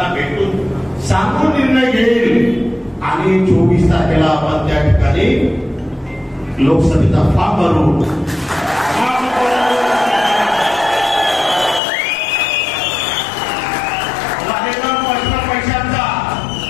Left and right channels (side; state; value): right; drops out; at 11.8 s